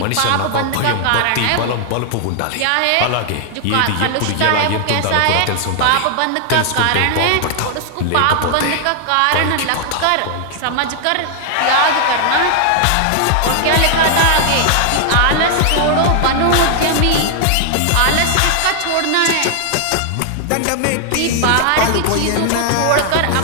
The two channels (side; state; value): both; different; correlation 0.00